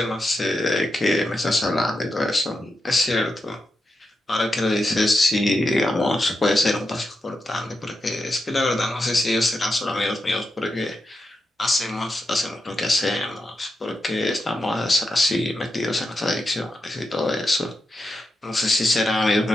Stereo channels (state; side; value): normal; both; correlation 0.87